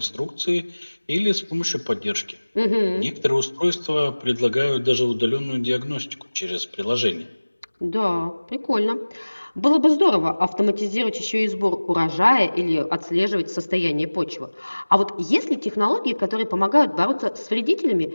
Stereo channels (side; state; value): both; inverted; correlation -1.00